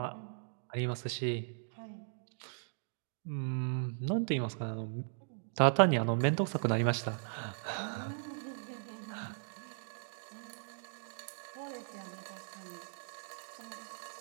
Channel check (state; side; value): silent; left; digital silence